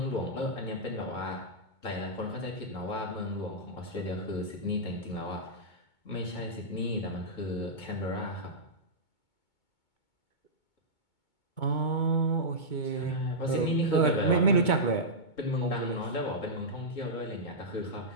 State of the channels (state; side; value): late; right; 2.2 ms